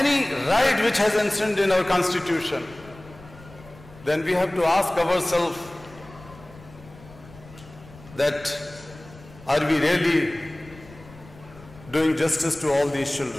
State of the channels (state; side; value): noise; left; rumble, 21 dB below the sound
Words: right which has enshrined in our constitution, then we have to ask ourselves that are we really doing justice to all these